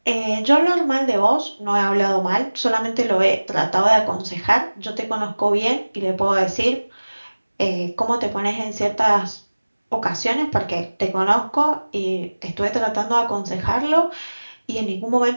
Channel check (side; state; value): both; inverted; correlation -1.00